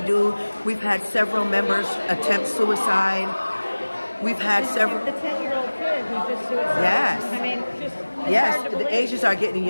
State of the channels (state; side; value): inverted; both; correlation -1.00